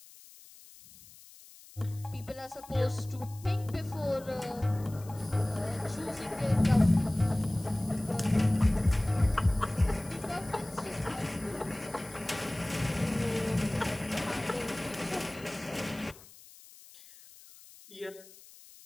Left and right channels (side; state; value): left; noise; hiss, 21 dB below the sound